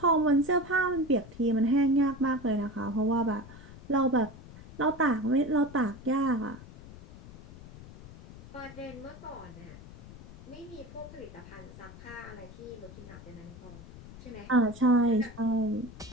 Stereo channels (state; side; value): noise; left; rumble, 17 dB below the sound